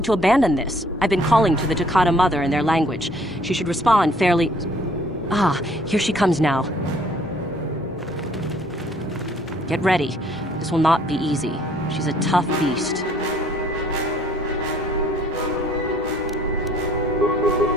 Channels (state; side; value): normal; both; correlation 0.59